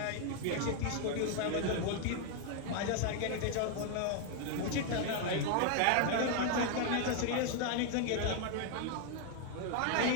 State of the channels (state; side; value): different; both; correlation 0.00